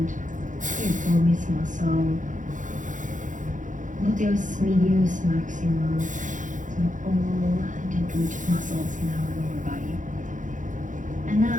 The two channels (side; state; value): left; late; 0.37 ms